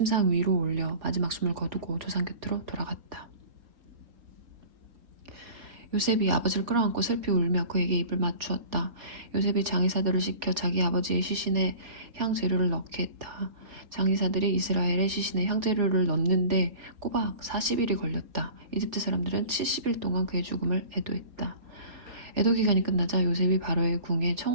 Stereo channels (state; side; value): late; left; 4.2 ms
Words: 위로 올려 마지막 숨을 거두고 조상 곁으로 돌아갔다. 요셉이 아버지를 끌어안고 슬피 울며 그에게 입을 맞추었다. 요셉이 장의사들을 시켜 자기 아버지의 시신에 향재료를 넣게 했다. 장의사들이 이스라엘의 시신에 향재료를 넣는데 꼬박 40일이 걸렸다. 이집트 사람들은 70일 동안 그의 죽음을 애도했다. 애도 기간이 끝나자 요셉이 바로의 궁에